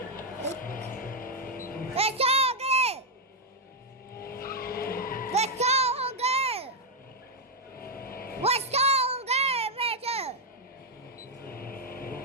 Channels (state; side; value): normal; both; correlation 0.01